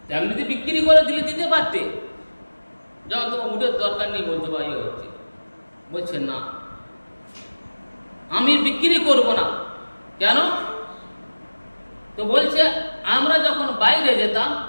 তেমনি বিক্রি করে দিলে দিতে পারতে, যখন তোমার উটের দরকার নেই বলছে ভাই হচ্ছে। বলছে না, আমি বিক্রি করব না। কেন? তো বলছে আমরা যখন বাইরে যেতাম,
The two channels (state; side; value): inverted; both; correlation -1.00